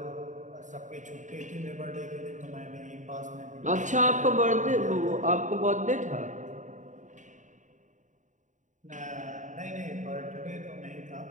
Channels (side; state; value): left; late; 0.36 ms